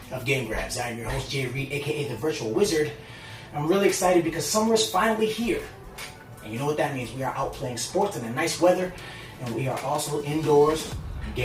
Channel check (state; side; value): identical; both; correlation 1.00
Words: of Game Grabs. I'm your host Jay Reed, aka the Virtual Wizard. I'm really excited because summer is finally here. And you know what that means. We are out playing sports in the nice weather, and we are also indoors